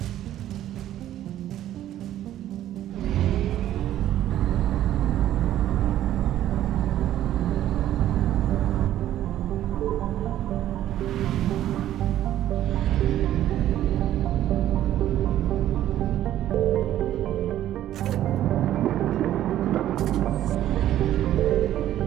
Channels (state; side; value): quieter; left; 12.5 dB